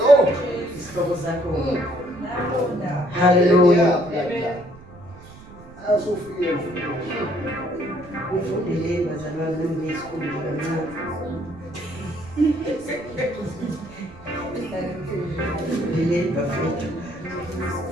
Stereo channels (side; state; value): right; noise; rumble, 20 dB below the sound